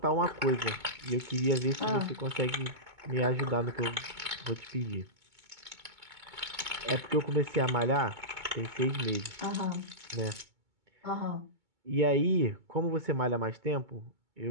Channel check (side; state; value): left; late; 2.2 ms